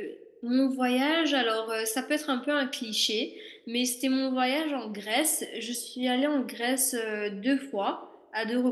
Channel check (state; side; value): identical; both; correlation 1.00